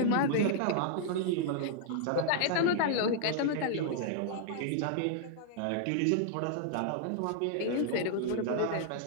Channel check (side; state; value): both; different; correlation -0.01